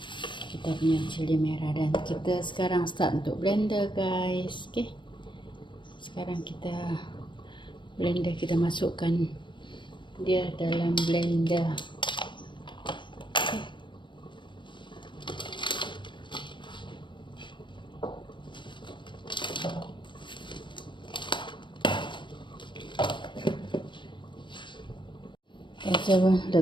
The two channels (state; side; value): late; right; 0.23 ms